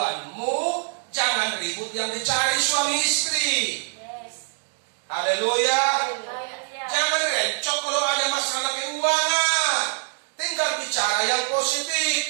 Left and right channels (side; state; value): left; silent; 55 dB below the other